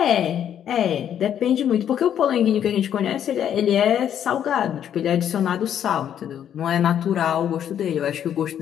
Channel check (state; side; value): quieter; right; 9.7 dB